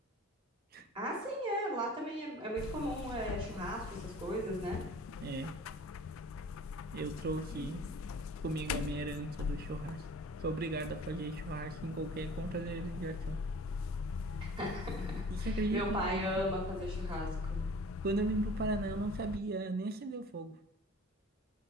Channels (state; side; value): normal; both; correlation 0.46